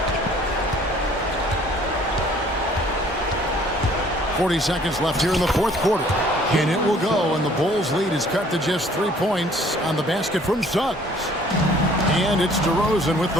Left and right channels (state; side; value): normal; both; correlation 0.56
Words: 40 seconds left here in the fourth quarter. And it will go, and the Bulls' lead is cut to just 3 points on the basket from Suggs. And it's DeRozan with